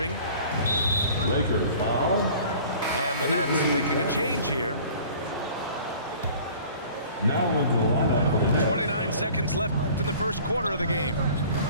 Lakers foul. And the Nets making a change here. Now into the lineup for the Nets. 29 seconds left in the first quarter of the game.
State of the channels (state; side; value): inverted; both; correlation -0.47